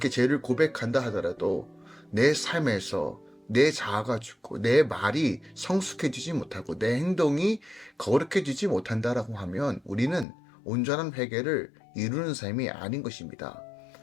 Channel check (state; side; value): drops out; right; at 10.2 s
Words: 죄를 고백한다 하더라도 내 삶에서 내 자아가 죽고 내 말이 성숙해지지 못하고 내 행동이 거룩해지지 못한다라고 하면 우리는 온전한 회개를 이루는 삶이 아닌 것입니다.